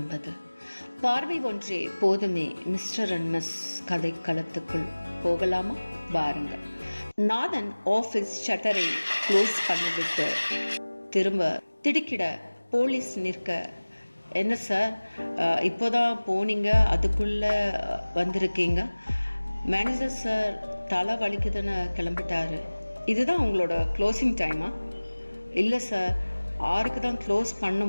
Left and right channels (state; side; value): inverted; both; correlation -1.00